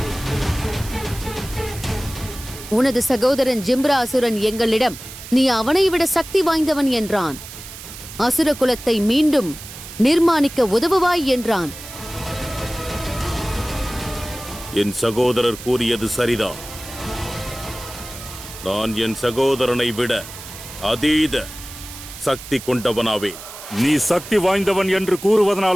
உனது சகோதரன் ஜிம்ரா அசுரன் எங்களிடம் நீ அவனை விட சக்தி வாய்ந்தவன் என்றான். அசுர குலத்தை மீண்டும் நிர்மாணிக்க உதவுவாய் என்றான். என் சகோதரர் கூறியது சரிதான். நான் என் சகோதரனை விட அதீத சக்தி கொண்டவனாவேன். நீ சக்தி வாய்ந்தவன் என்று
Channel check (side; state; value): right; noise; hiss, 13 dB below the sound